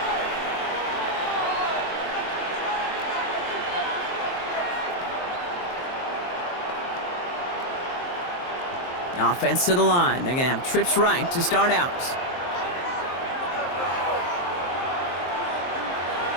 Offense to the line. They're going to have trips right to start out.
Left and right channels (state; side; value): late; right; 23 ms